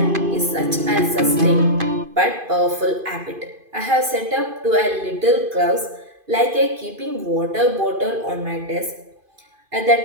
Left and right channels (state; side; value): late; left; 2.5 ms